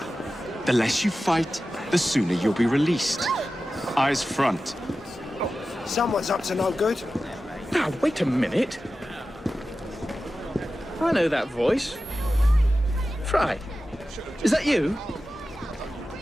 The less you fight, the sooner you'll be released. Eyes front. Someone's up to no good. Now, wait a minute. I know that voice. Frye. Is that you?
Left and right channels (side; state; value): both; normal; correlation 0.94